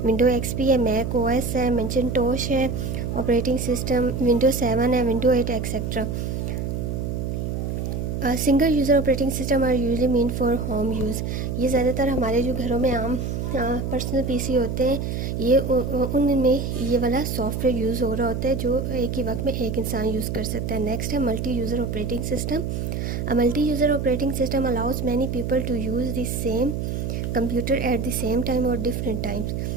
विंडो एक्सपी है, मैक ओएस है, मैकिन्टोश है, ऑपरेटिंग सिस्टम विंडो 7 है, window 8 etcetera. Single user operating system are usually mean for home use. ये ज़्यादातर हमारे जो घरों में आम पर्सनल पीसी होते हैं ये उनमें ये वाला सॉफ्टवेयर यूज़ हो रहा होता है जो एक ही वक्त में एक इंसान यूज़ कर सकता है। नेक्स्ट है multi user operating system. A multi user operating system allows many people to use the same computer at the same time और डिफरेंट टाइम्स।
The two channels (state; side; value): noise; right; hum, 3 dB below the sound